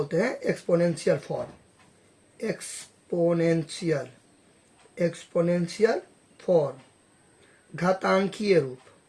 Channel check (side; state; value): both; identical; correlation 1.00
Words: हैं exponential form, exponential, exponential form, घातांकीय रूप,